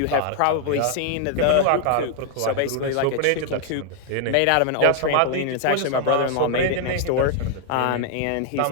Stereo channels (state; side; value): different; both; correlation 0.00